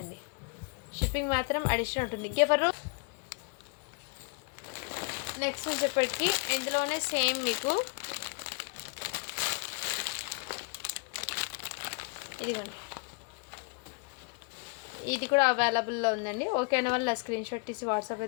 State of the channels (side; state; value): right; quieter; 34.7 dB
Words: అండి. షిప్పింగ్ మాత్రం అడిషనల్ ఉంటుంది. ఎవరు నెక్స్ట్ వచ్చేప్పటికి ఇందులోనే సేమ్ మీకు ఇదిగోండి ఇది కూడా అవైలబుల్లో ఉందండి. ఓకేనా వాళ్ళ స్క్రీన్ షాట్ తీసి వాట్సాప్